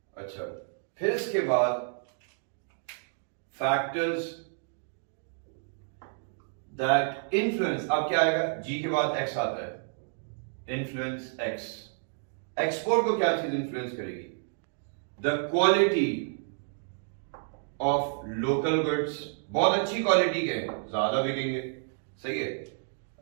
अच्छा, फिर इसके बाद फैक्टर्स दैट इन्फ्लुएंस, अब क्या आएगा, जी के बाद एक्स आता है, इन्फ्लुएंस एक्स, एक्सपोर्ट को क्या चीज इन्फ्लुएंस करेगी, the quality of local goods, बहुत अच्छी क्वालिटी के हैं, ज्यादा बिकेंगे, सही है।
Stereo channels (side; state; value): left; silent; digital silence